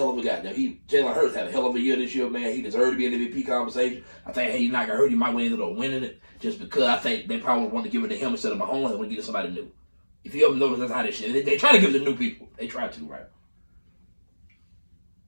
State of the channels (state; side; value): inverted; both; correlation -1.00